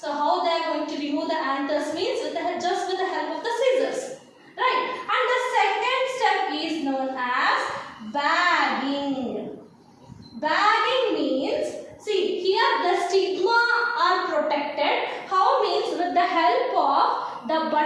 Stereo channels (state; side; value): identical; both; correlation 1.00